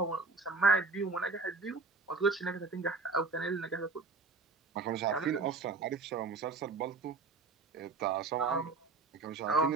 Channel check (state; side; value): quieter; left; 4.1 dB